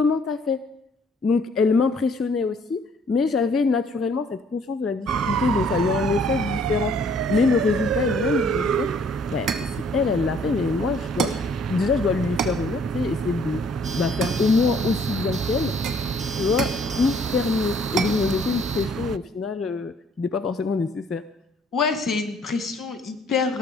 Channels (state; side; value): normal; both; correlation 0.60